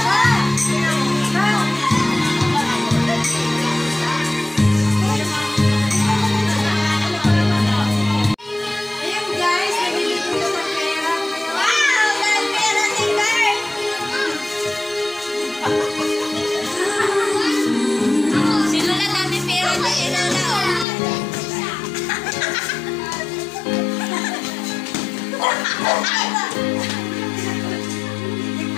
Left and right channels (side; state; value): right; drops out; at 20.9 s